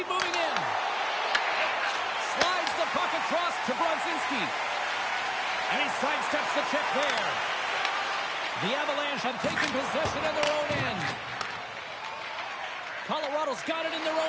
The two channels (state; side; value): identical; both; correlation 1.00